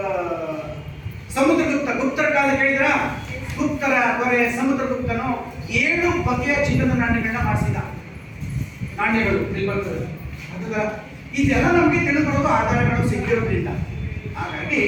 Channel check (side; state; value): both; identical; correlation 1.00